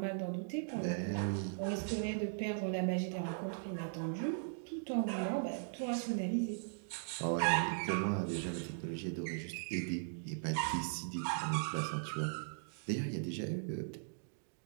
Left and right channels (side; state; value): left; silent; digital silence